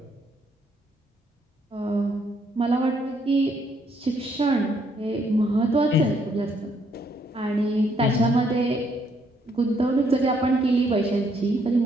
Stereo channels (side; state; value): both; normal; correlation 0.70